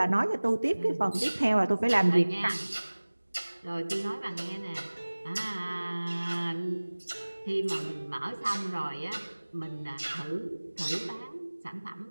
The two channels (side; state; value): both; inverted; correlation -1.00